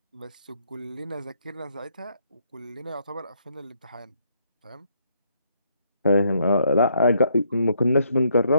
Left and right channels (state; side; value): inverted; both; correlation -0.72